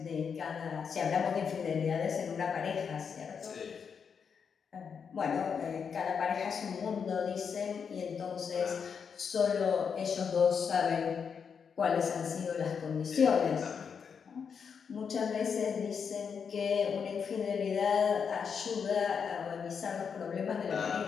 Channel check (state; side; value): quieter; right; 6.5 dB